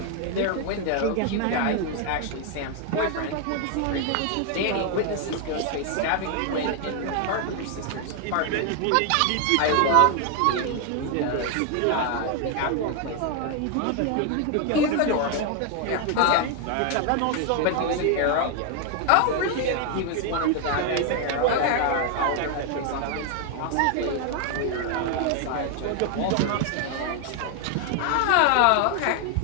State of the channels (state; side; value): different; both; correlation 0.00